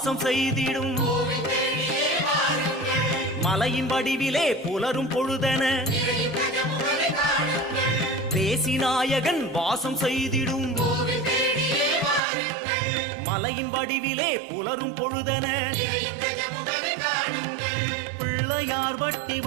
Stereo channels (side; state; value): left; drops out; at 12.2 s